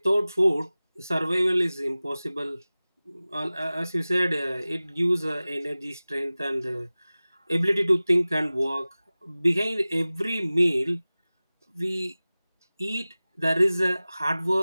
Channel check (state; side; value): inverted; both; correlation -0.98